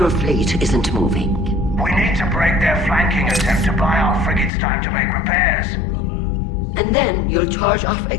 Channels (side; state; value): right; drops out; at 4.5 s